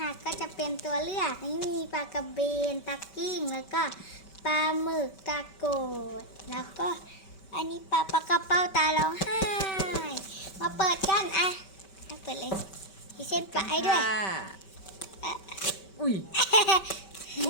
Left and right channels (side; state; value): right; late; 5.2 ms